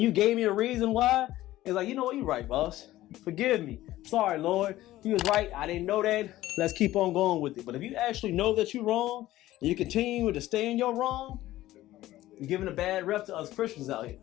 you gave me a reason why. It's like, you know what, you're right, boss. Forgive me. Sorry, Lord. He was right. I didn't know that. Let's keep on going with it. But if you actually know that you're wrong and you continue to stay in your wrong, you're giving a bad rep to us Christians out here.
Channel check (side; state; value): right; quieter; 15.5 dB